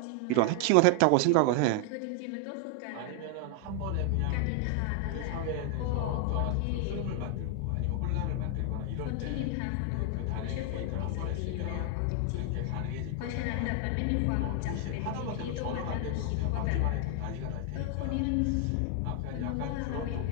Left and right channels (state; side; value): different; both; correlation 0.00